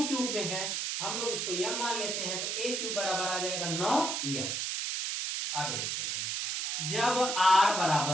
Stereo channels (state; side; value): noise; right; hiss, 1 dB below the sound